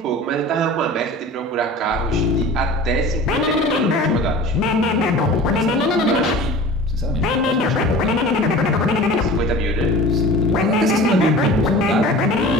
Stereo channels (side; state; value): both; normal; correlation 0.39